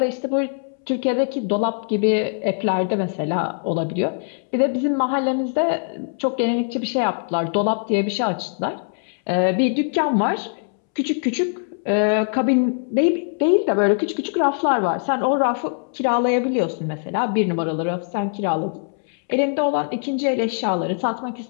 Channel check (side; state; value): right; silent; 64 dB below the other